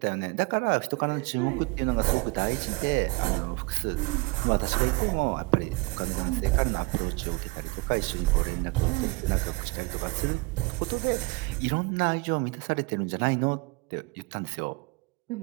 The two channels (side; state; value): left; quieter; 26.0 dB